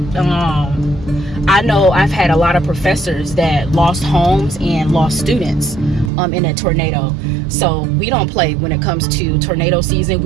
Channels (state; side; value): drops out; left; at 6.1 s